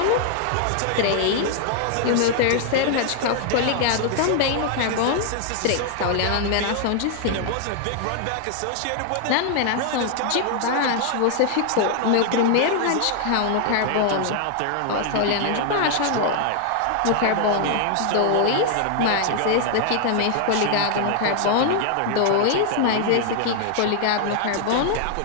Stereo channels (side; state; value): both; different; correlation 0.00